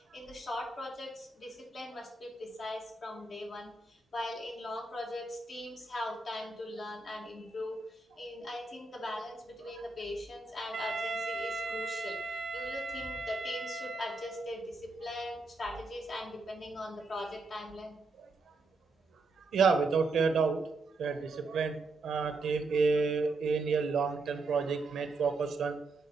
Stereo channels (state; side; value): quieter; left; 3.4 dB